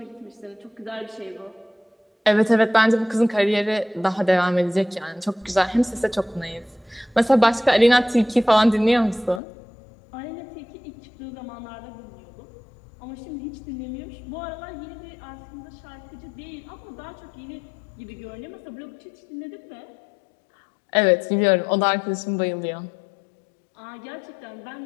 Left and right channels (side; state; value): right; drops out; at 9.4 s